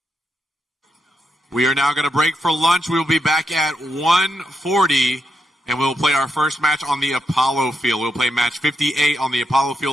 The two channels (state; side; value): normal; both; correlation 0.83